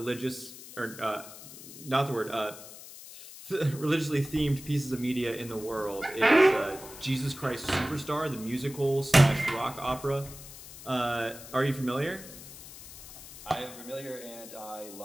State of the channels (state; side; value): noise; left; hiss, 15 dB below the sound